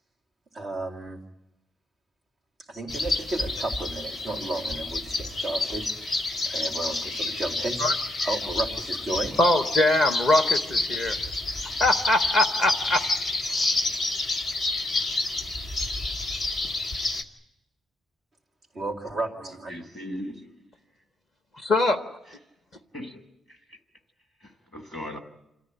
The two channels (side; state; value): both; normal; correlation 0.76